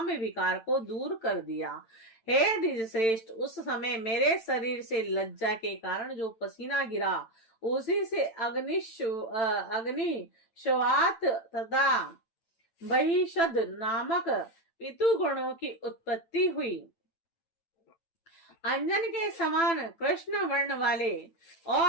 विकार को दूर कर दिया। हे द्विज श्रेष्ठ, उस समय मेरे शरीर से लज्जा के कारण जो पसीना गिरा उसी से अग्नि श्वात तथा बहिषद नामक पितु गुणों की उत्पत्ति हुई। अंजन के समान कृष्ण वर्ण वाले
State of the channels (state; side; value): late; right; 8.9 ms